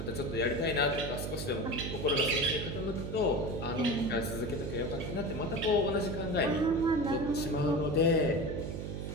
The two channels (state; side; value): noise; right; hum, 5 dB below the sound